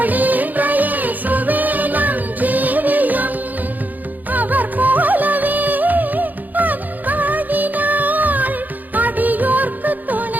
சுவேனம் ஜீவியம். அவர் போலவே அன்பாகினாள், அடியோர்க்கு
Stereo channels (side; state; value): left; late; 0.083 ms